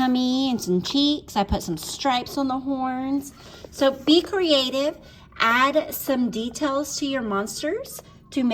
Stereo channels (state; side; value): identical; both; correlation 1.00